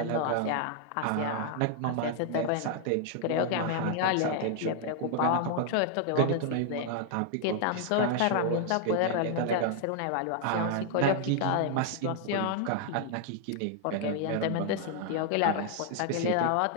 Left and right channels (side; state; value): both; different; correlation 0.00